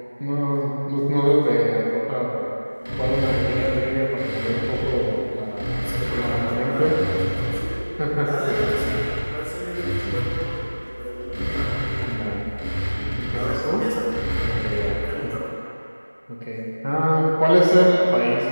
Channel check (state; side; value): inverted; both; correlation -1.00